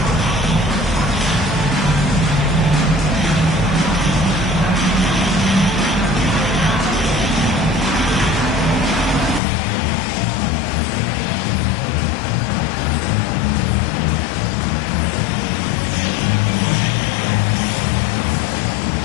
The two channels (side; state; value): right; drops out; at 9.4 s